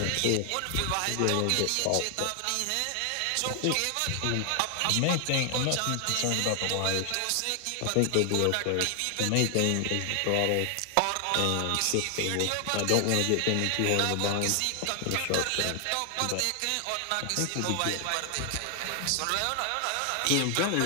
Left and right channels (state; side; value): different; both; correlation 0.00